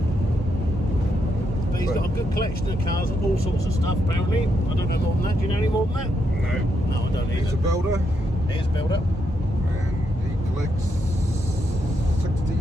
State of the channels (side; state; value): both; normal; correlation 0.80